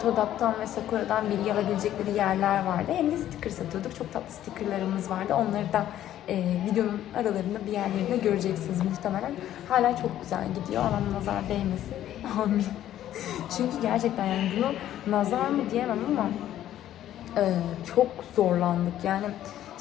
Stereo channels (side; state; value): right; quieter; 12.2 dB